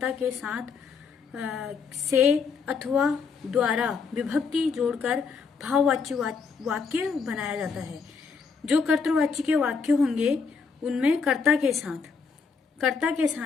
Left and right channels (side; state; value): right; quieter; 5.2 dB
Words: के साथ से अथवा द्वारा विभक्ति जोड़कर भाववाच्य वाक्य बनाया जाता है। जो कर्तृवाच्य के वाक्य होंगे उनमें कर्ता के साथ